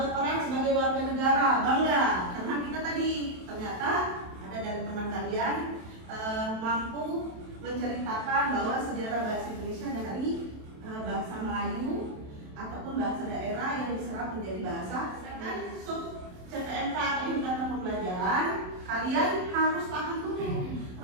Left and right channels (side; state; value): left; late; 27 ms